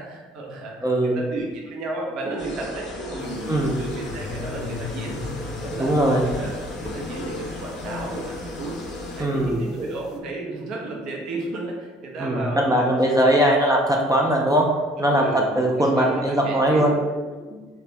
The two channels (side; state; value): both; normal; correlation 0.57